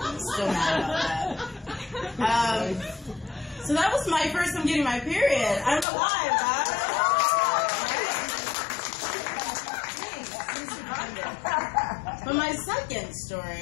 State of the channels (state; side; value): drops out; right; at 5.9 s